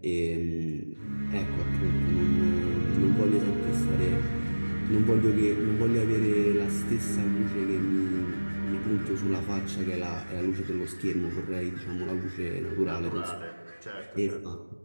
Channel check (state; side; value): inverted; both; correlation -1.00